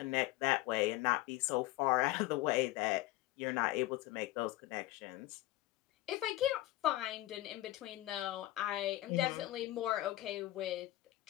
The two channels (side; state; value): right; quieter; 16.8 dB